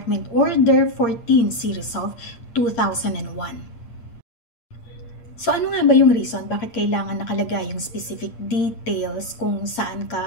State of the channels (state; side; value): late; right; 8.6 ms